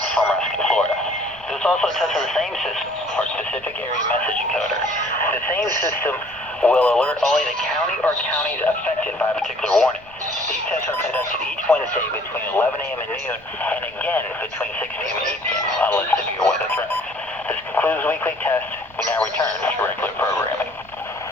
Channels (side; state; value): right; noise; rumble, 25 dB below the sound